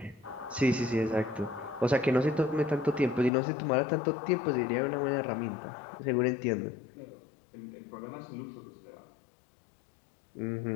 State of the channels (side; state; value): right; drops out; at 3.3 s